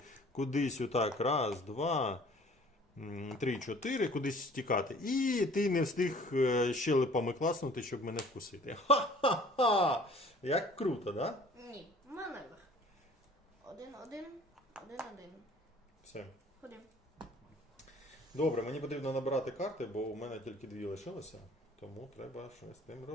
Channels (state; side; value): normal; both; correlation 0.51